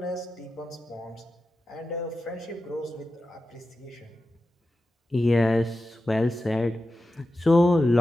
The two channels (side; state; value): both; normal; correlation 0.92